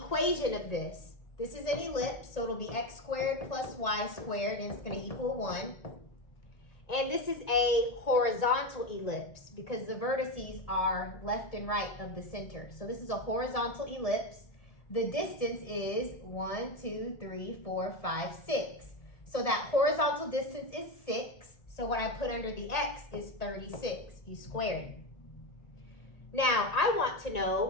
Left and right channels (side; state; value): right; late; 1.8 ms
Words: of this is an ellipse, so it'll be x squared plus y squared, and it's going to equal 1. And this is a horizontal ellipse because the vertices are left and right of the center. So this is a horizontal ellipse. The distance is 1, 2, 3, 4, 5, 6. So that horizontal distance is 6. So what I put under the x is 36. You squared it. Now I want to